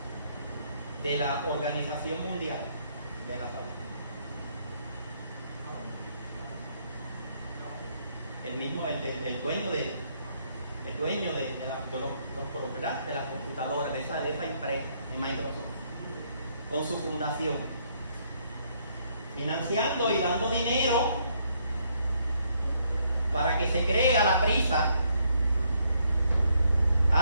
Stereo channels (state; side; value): inverted; both; correlation -0.71